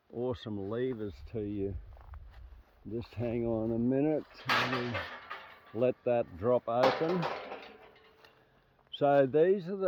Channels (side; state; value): both; identical; correlation 1.00